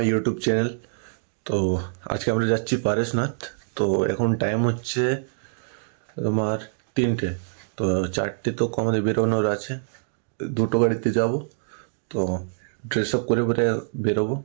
YouTube channel. তো আজকে আমরা যাচ্ছি পারসনাথ। তো এখন টাইম হচ্ছে তোমার 3টে, তো 4টে তো আমাদের বেরোনোর আছে, 2টো গাড়িতে যাব। তো ড্রেস আপ করে পরে বেরোবো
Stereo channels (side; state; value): left; silent; digital silence